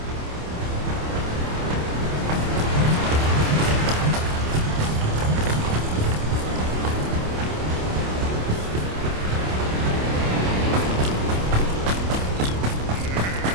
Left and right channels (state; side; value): late; left; 27 ms